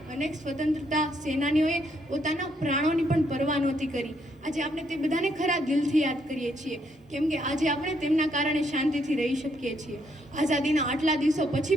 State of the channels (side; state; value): both; normal; correlation 0.73